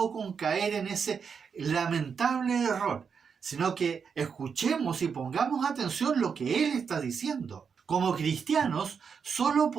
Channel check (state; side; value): quieter; left; 6.3 dB